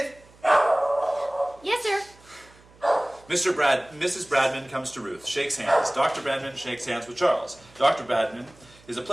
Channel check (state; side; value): noise; right; hum, 26 dB below the sound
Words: Yes, sir. Mrs. Bradman comes to Ruth, shakes hands. Dr. Bradman shakes hands with Charles. Dr. Bradman is a